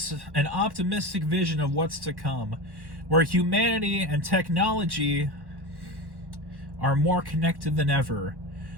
an optimistic vision of what's to come, where humanity and technology are more connected than ever.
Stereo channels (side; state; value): left; late; 1.1 ms